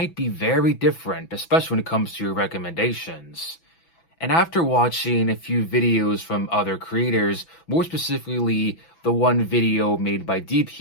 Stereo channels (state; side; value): late; right; 6.0 ms